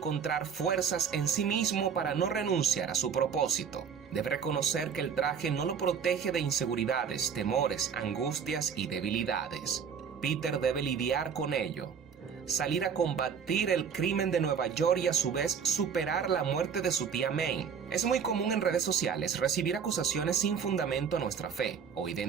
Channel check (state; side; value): quieter; left; 6.9 dB